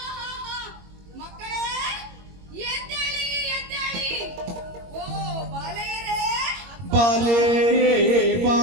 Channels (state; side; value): late; left; 21 ms